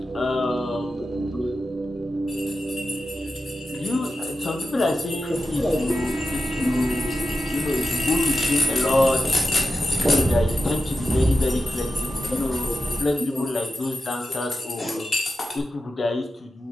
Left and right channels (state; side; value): normal; both; correlation 0.92